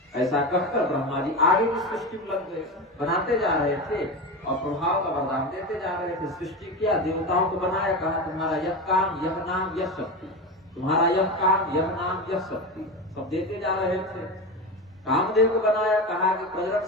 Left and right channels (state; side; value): normal; both; correlation 0.22